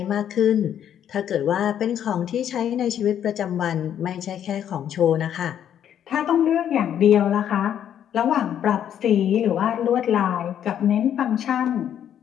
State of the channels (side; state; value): right; quieter; 9.8 dB